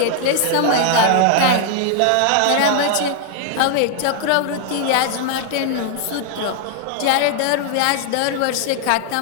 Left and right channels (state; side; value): different; both; correlation -0.01